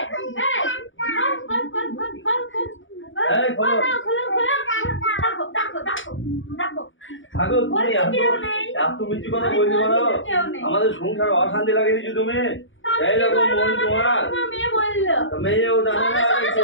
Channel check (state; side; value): late; right; 0.56 ms